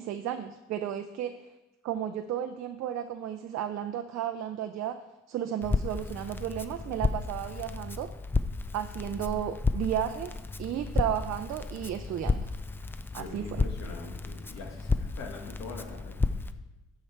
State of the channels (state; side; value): normal; both; correlation 0.50